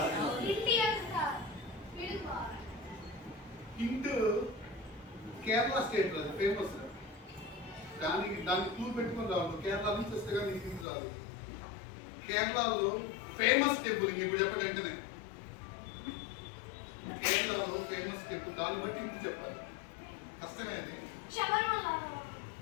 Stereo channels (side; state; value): right; drops out; at 10.9 s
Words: హింట్ కేరళ స్టేట్ అది ఫేమస్. దానికి క్లూ పెట్టుకుని రావాలి. కేరళ నుంచి వస్తే కానీ నీకు హింట్ రాదు. కేరళలో ఫేమస్ టెంపుల్. ఇప్పుడు చెప్పండి వెంటనే. కేరళలో ఫేమస్ టెంపుల్. దాన్ని బట్టి హింట్ చెప్పాలి. కష్టమే అది.